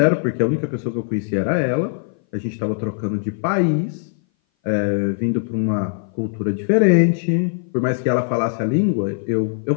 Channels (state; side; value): silent; right; 59 dB below the other